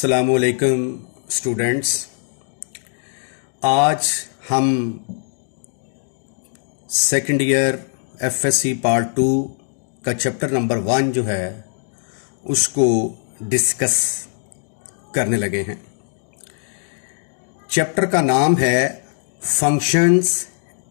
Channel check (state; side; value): silent; right; 65 dB below the other